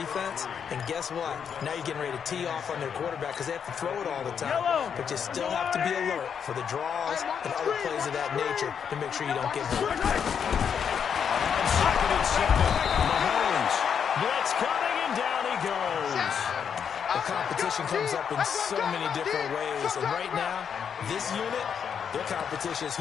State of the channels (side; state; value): right; quieter; 7.4 dB